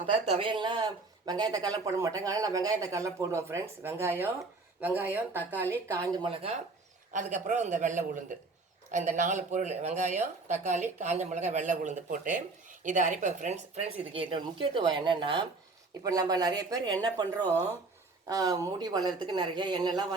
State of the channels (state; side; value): quieter; left; 3.6 dB